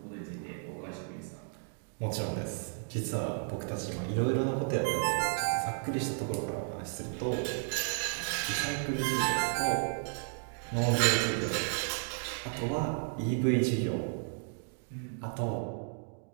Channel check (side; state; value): left; silent; 56 dB below the other